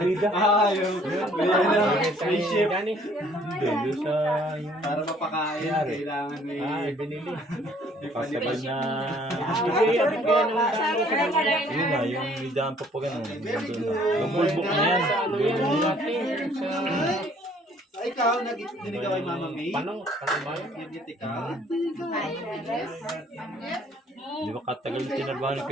Rida. Yung may ship. Hindi, doon sa, Para mapakain, kailangan may binili. ipalipad. Kasabay na, yun na, yung midaan pa pa gano'n. Yung bulbok na yan. Ikaw, nag-dinig ka kay Mama May? Panong ba yun? Nag-dinig ka? Di ba katagal yung tinabahan ni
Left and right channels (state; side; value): normal; both; correlation 0.59